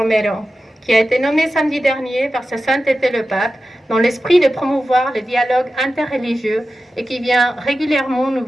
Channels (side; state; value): both; normal; correlation 0.93